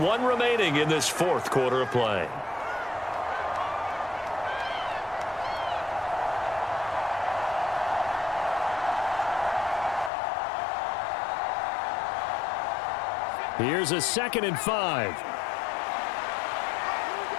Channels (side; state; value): right; drops out; at 10.1 s